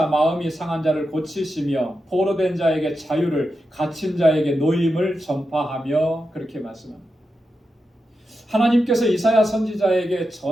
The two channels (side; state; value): both; normal; correlation 0.89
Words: 마음이 상한 자를 고치시며 포로된 자에게 자유를, 갇힌 자에게 노임을 전파하며, 그렇게 말씀합니다. 하나님께서 이사야 선지자에게